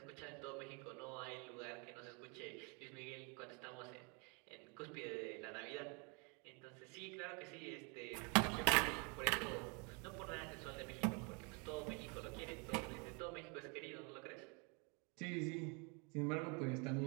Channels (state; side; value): quieter; left; 33.1 dB